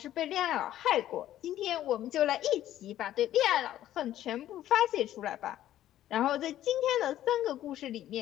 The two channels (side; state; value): right; quieter; 12.7 dB